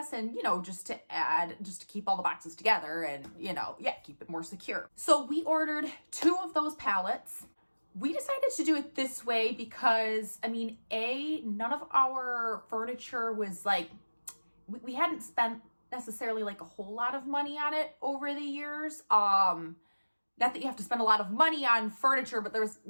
And, just to keep all the boxes together and, keep it more secure. So we ordered 2 of those pallets. We decided to do it this way because, none of our furniture was like, we hadn't spent necessarily like a whole lot of money on it over the years. Not that you have to spend a lot of money on furniture, but there was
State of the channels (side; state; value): both; inverted; correlation -1.00